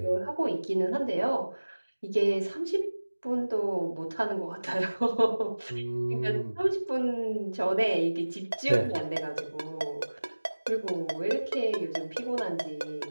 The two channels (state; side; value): inverted; both; correlation -1.00